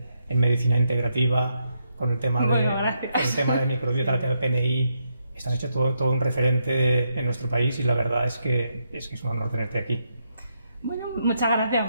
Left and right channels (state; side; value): inverted; both; correlation -0.80